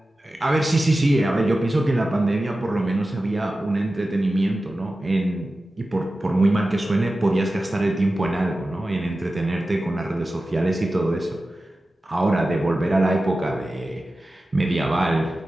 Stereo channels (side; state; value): both; normal; correlation 0.94